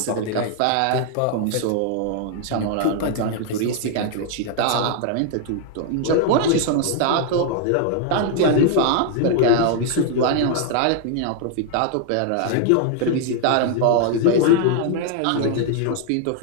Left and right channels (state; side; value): different; both; correlation 0.00